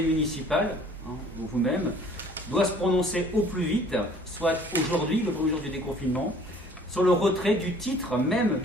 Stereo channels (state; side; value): normal; both; correlation 0.54